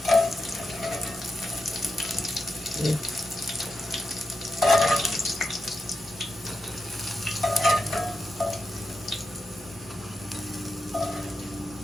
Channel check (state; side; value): noise; right; hum, 27 dB below the sound